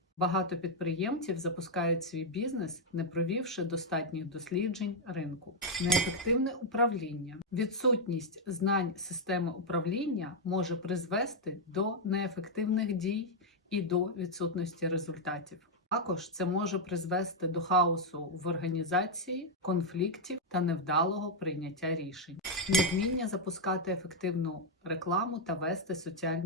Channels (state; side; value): normal; both; correlation -0.01